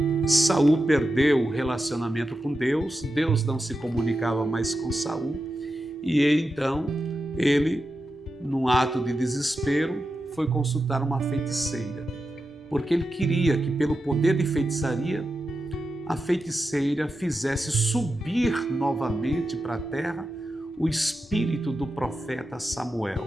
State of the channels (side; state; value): both; normal; correlation 0.89